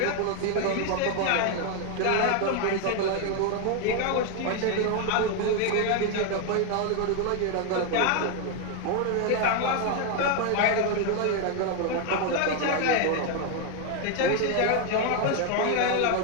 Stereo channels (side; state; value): both; different; correlation 0.01